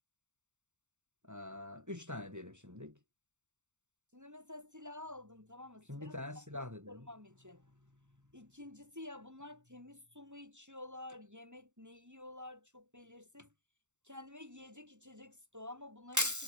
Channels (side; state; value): left; late; 0.84 ms